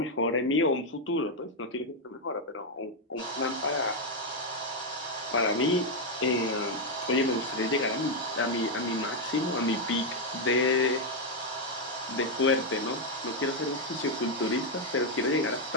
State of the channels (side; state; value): both; normal; correlation 0.01